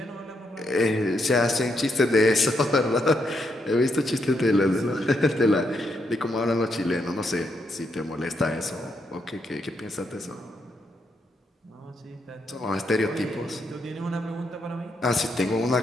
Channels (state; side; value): normal; both; correlation 0.79